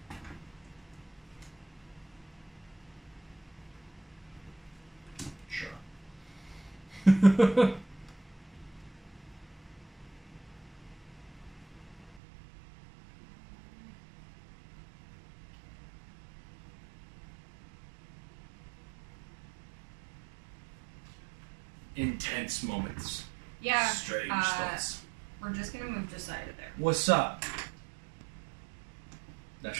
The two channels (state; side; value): drops out; left; at 12.2 s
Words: Intense moments. Yeah. Strange thoughts. We're just gonna move Josiah to there. What's up? Not